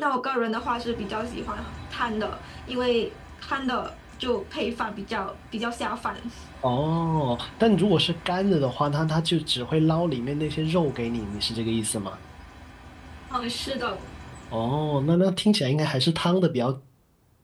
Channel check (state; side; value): identical; both; correlation 1.00